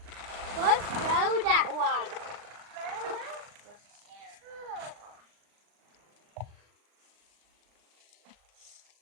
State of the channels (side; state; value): left; late; 39 ms